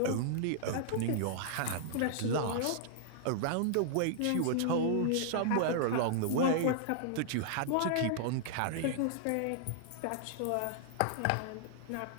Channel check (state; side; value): different; both; correlation -0.01